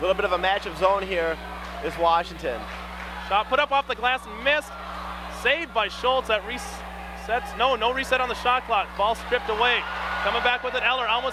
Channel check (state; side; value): identical; both; correlation 1.00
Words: little bit of a matchup zone here is Washington. Shot put up off the glass and missed. Saved by Schultz. That resets. No reset on the shot clock. Ball stripped away. Coming back with it, Eller